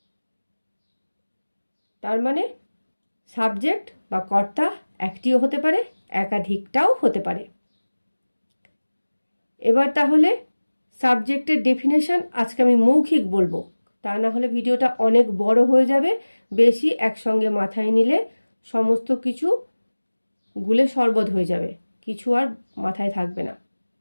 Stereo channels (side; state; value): both; inverted; correlation -1.00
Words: তার মানে সাবজেক্ট বা কর্তা একটিও হতে পারে, একাধিকটাও হতে পারে। এবার তাহলে সাবজেক্টের ডেফিনেশন আজকে আমি মৌখিক বলবো, তা না হলে ভিডিওটা অনেক বড় হয়ে যাবে। বেশি একসঙ্গে মাথায় নিলে সমস্ত কিছু গুলে সরবত হয়ে যাবে, কিছু আর মাথায় থাকবে না।